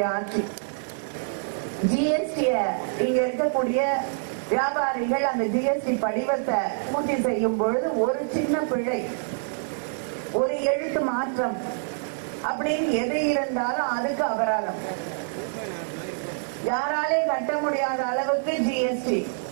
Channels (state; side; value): silent; left; 61 dB below the other